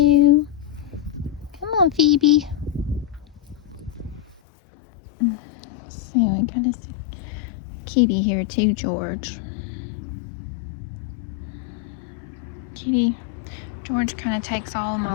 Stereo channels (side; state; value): right; drops out; at 4.4 s